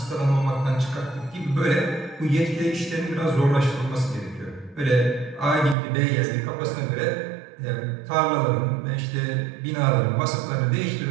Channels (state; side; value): drops out; left; at 5.8 s